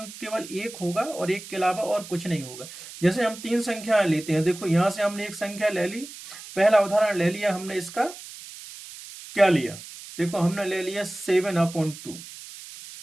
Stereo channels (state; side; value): noise; right; hiss, 14 dB below the sound